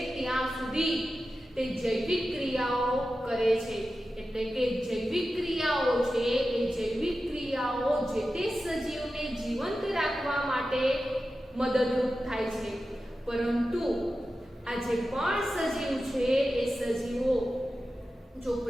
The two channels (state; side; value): normal; both; correlation 0.93